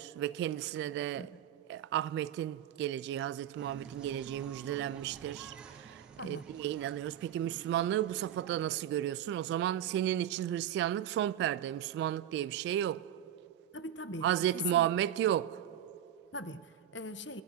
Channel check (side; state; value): left; quieter; 10.4 dB